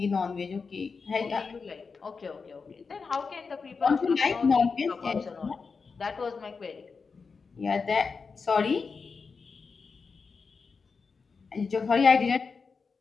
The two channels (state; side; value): quieter; right; 5.0 dB